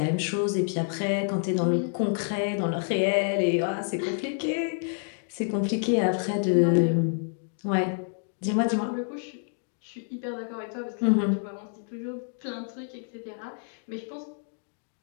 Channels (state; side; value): silent; right; 59 dB below the other